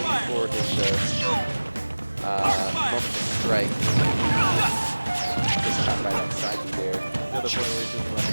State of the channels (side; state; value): both; inverted; correlation -1.00